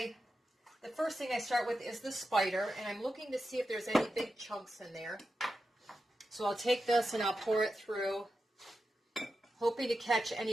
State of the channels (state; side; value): normal; both; correlation 0.90